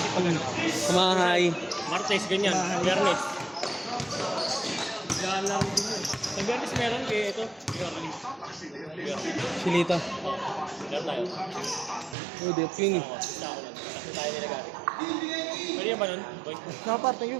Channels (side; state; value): left; drops out; at 12.2 s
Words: pag ano. Kumahay. Martes, ganyan. Biyernes. Yan lang din yun. Sa Biyernes meron kaya ito. Biyernes. Silita. Meron tayo. Oh, dep yun eh. Basta ako lang. Basta tayo nila gari. Pwede yan ba nun? Boy? Nakapart, thank you.